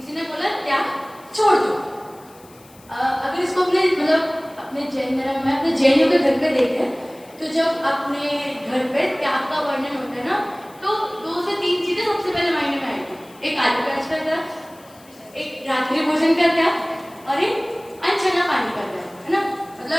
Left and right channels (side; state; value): left; noise; hiss, 26 dB below the sound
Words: ने बोला त्याग छोड़ दो। अगर इसको अपने जैन धर्म में अपने जैनियों के घर पे देखें तो जब अपने घर पे त्याग का वर्णन होता है ना तो 2 से 3 चीजें सबसे पहले मायने में आएगी। एक आदि का त्याग, एक रात्रि भोजन का त्याग और एक अनछना पानी का त्याग, है ना।